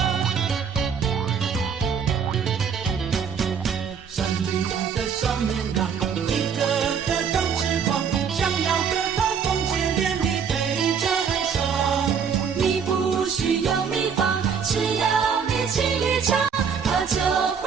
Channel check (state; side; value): quieter; left; 6.8 dB